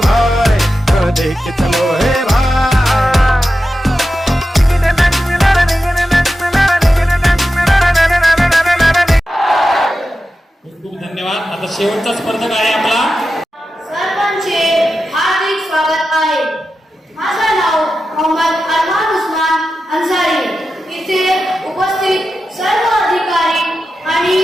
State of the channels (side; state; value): both; normal; correlation 0.91